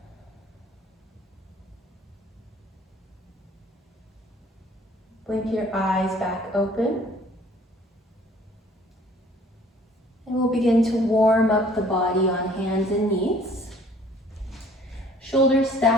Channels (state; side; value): normal; both; correlation 0.55